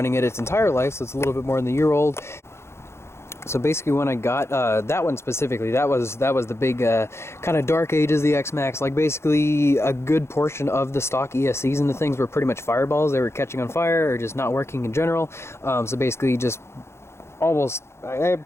it its entire life, so it's a little bit more than a year old. So basically when I got that one specifically, that was the big kind of dark age of the X-Maxx. Like basically a good portion of the stock ESCs and the things were pretty much fireballs. They were catching on fire or just not working in general. So basically just almost, I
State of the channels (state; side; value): late; right; 0.13 ms